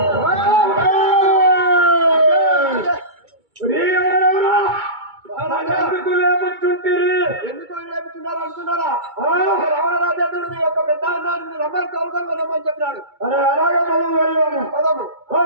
ఎందుకు రేపుతున్నారు అనుకున్నారా రావణ రాజేంద్రుడు మీ యొక్క పెద్ద అన్నాడు రమ్మని తోలుకొని రమ్మని చెప్పినాడు అరే అలాగే మనం వెళ్ళాము. పదము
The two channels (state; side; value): late; left; 2.2 ms